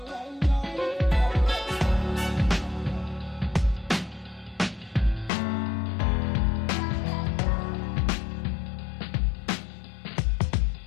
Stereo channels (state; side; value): drops out; right; at 5.3 s